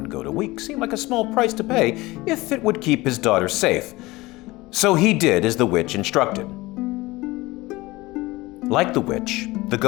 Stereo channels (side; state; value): right; quieter; 20.6 dB